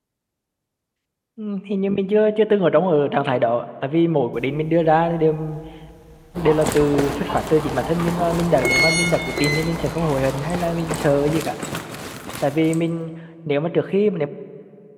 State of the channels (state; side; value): identical; both; correlation 1.00